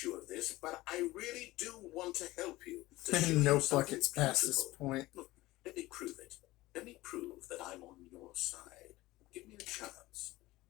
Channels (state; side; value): quieter; right; 18.5 dB